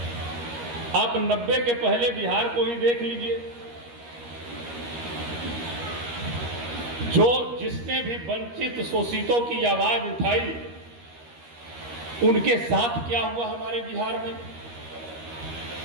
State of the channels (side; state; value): left; late; 13 ms